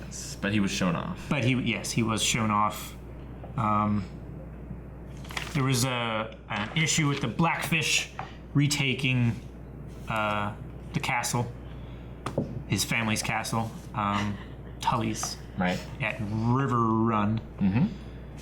but he was shown off. but he was shown off. There was an issue with the Blackfish retaking the castle, his family's castle, Tully's Right. at River Run,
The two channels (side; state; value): both; identical; correlation 1.00